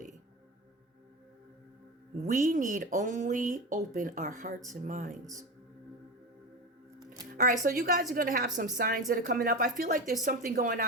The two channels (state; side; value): normal; both; correlation 0.22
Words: We need only open our hearts and minds. All right, so you guys are going to have some signs that are coming up. I feel like there's something going